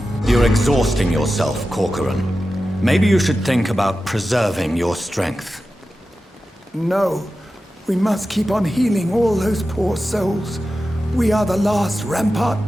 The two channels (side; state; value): both; normal; correlation 0.93